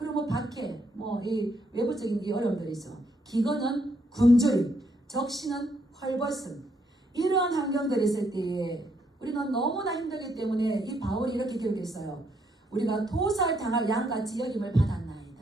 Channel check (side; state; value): both; normal; correlation 0.74